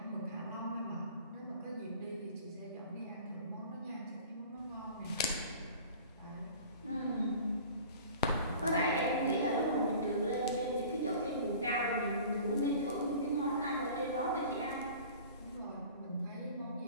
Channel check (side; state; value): both; inverted; correlation -0.44